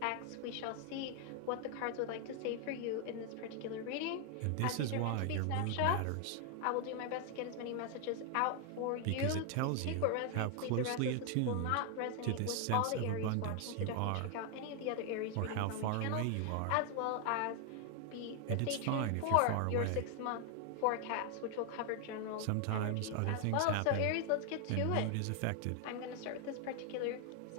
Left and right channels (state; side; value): different; both; correlation 0.00